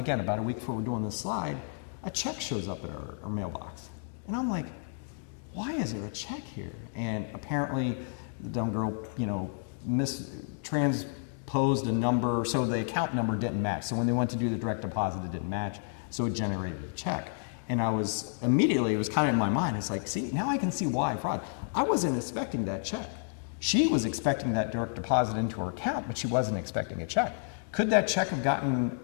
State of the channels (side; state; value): right; silent; 57 dB below the other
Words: week before we're doing this slide, a check shows up at our mailbox. And I'm like, why is there a check here? And apparently the dumb girl, transposed a number, so the account number didn't match. So when they went to do the direct deposit, it didn't match, so it generated a check. And it was kind of in my mind, it's like, see, now I can see why fraud. I wasn't expecting that check. She was expecting that direct deposit into her account, but she wasn't expecting a check. Could that check have gotten